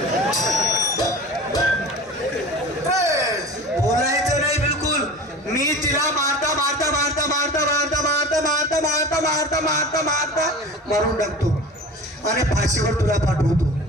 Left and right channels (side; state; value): both; normal; correlation 0.36